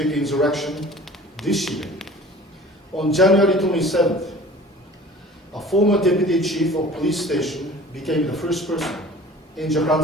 insurrection this year. On January 27th, a former deputy chief of police station became the first person in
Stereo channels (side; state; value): both; normal; correlation 0.45